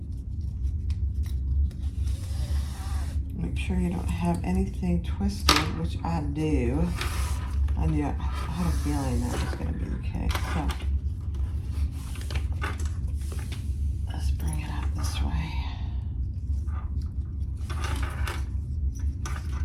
Make sure you don't have anything twisted, which I do. I had a feeling that was going to be the case. So let's bring it up this way.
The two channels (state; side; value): identical; both; correlation 1.00